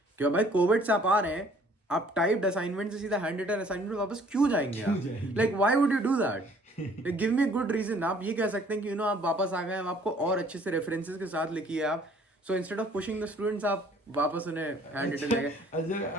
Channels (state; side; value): normal; both; correlation 0.57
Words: क्यों भाई कोविड से आप आ रहे हैं, आप टाइप्ड असाइनमेंट से सीधा हैंडरिटन असाइनमेंट वापस क्यों जाएंगे आप? Like why would you do that? Give me good reason. आप ये कह सकते हैं कि आप वापस आ गए, हम आपको और अच्छे से रेफरेंसेस के साथ लिखिए आप, so instead of pushing the students आप वापस उन्हें हैंड रिटन लगे।